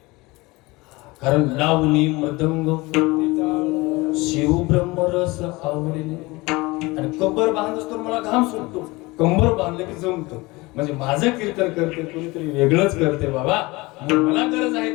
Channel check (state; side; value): quieter; right; 22.7 dB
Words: कारण लावणी मृदंग शिव ब्रह्मरस आवडीने. आणि कंबर बांधत असतो मला घाम सुटतो. कंबर बांधले की जमतो. म्हणजे माझं कीर्तन करते कोणीतरी वेगळंच करते बाबा. मला गरज